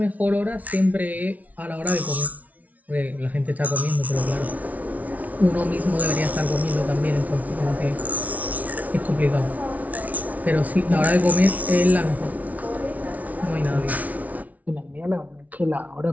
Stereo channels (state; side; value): late; left; 0.072 ms